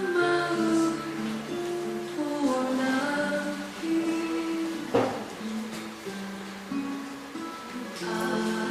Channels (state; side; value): identical; both; correlation 1.00